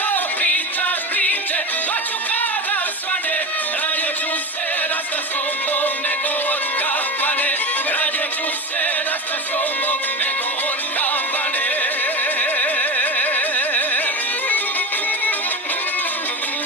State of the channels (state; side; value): normal; both; correlation 0.22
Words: pričaš priče, noću kada svane, radije ću se rasta s tobom nego od kafane. Radije ću se rasta s tobom nego od kafane.